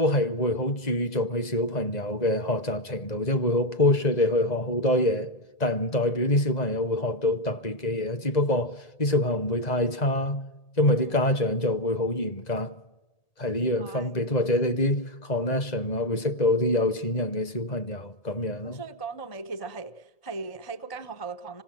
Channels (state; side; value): late; right; 2.0 ms